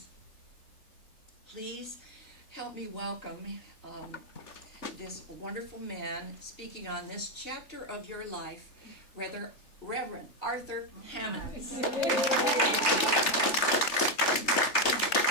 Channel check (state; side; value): late; right; 3.4 ms